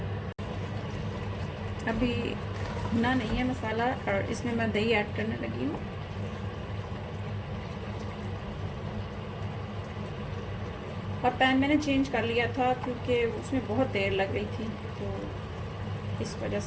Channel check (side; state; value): both; identical; correlation 1.00